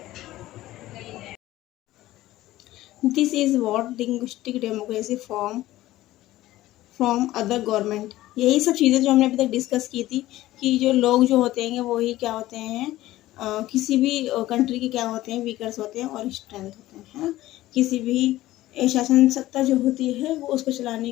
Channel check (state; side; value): quieter; right; 15.9 dB